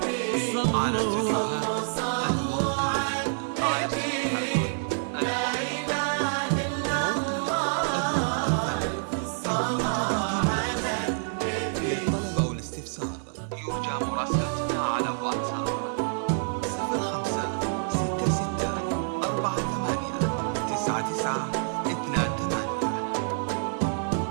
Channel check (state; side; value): silent; left; 60 dB below the other